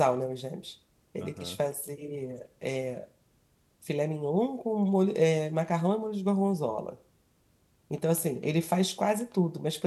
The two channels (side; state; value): both; identical; correlation 1.00